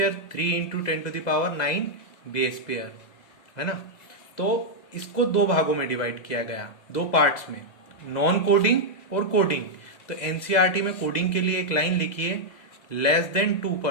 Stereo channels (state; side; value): late; right; 2.0 ms